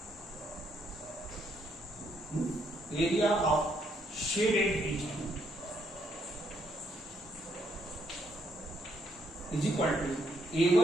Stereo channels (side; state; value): both; normal; correlation 0.73